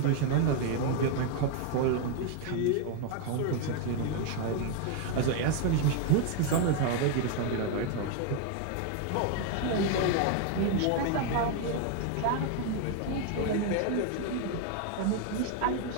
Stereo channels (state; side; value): different; both; correlation 0.01